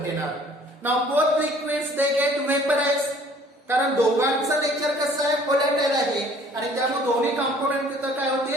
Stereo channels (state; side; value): normal; both; correlation 0.55